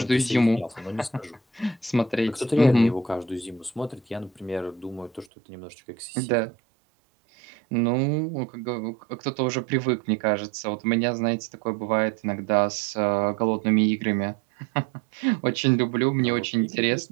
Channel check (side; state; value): left; drops out; at 5.2 s